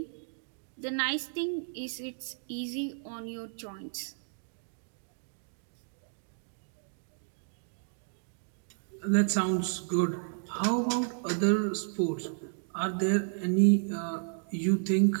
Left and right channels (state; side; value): silent; left; digital silence